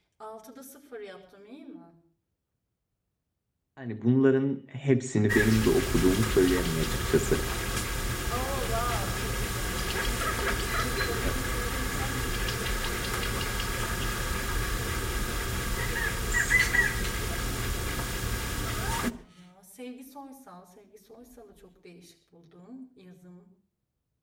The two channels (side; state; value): both; identical; correlation 1.00